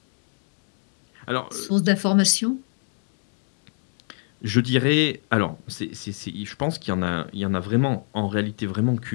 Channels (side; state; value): right; silent; 56 dB below the other